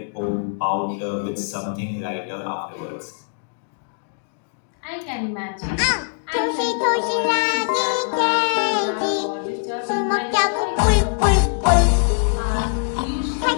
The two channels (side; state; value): right; silent; digital silence